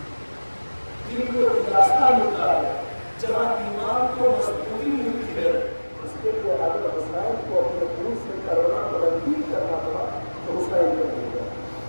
جہاں ایمان کو مضبوطی ملتی ہے اس کے لیے اگر حسین کو اپنے خون سے کرونا تبدیل کرنا پڑا تو حسین کر دے گا.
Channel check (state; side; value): inverted; both; correlation -1.00